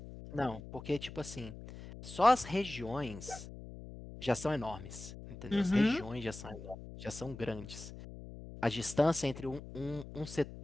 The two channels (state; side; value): noise; left; hum, 13 dB below the sound